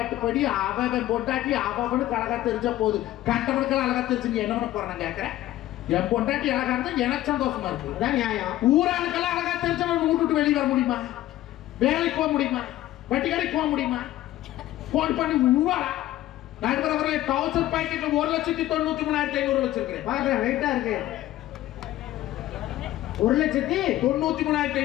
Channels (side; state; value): right; quieter; 14.7 dB